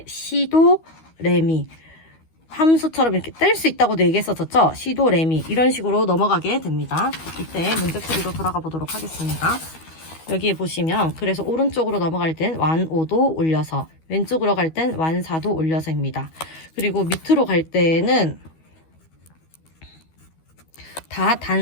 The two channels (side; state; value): right; late; 12 ms